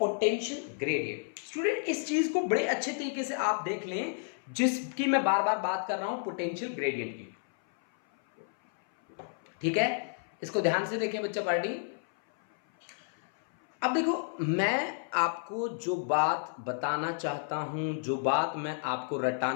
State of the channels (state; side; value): silent; right; 57 dB below the other